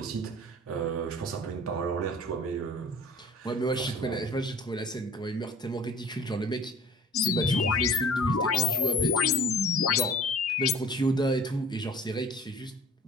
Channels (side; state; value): both; normal; correlation 0.46